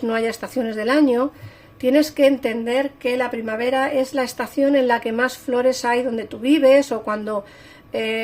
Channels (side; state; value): both; identical; correlation 1.00